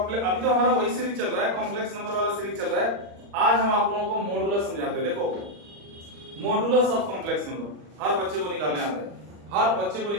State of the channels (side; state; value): left; late; 40 ms